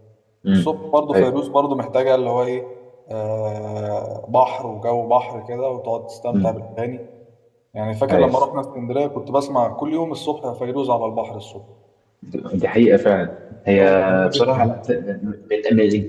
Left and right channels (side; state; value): both; identical; correlation 1.00